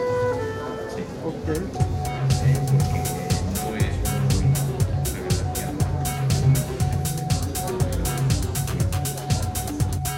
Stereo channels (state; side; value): identical; both; correlation 1.00